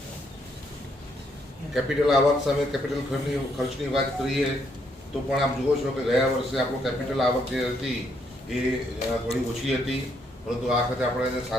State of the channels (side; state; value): both; normal; correlation 0.73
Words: કેપિટલ આવક સામે કેપિટલ ખર્ચની વાત કરીએ તો પણ આપ જુઓ છો કે ગયા વર્ષે આપણું કેપિટલ આવક જે હતી એ થોડી ઓછી હતી, પરંતુ આ વખતે આપણે